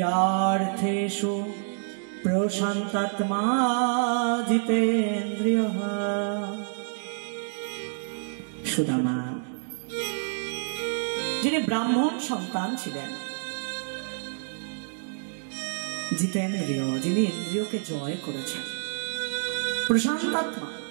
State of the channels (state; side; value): silent; left; digital silence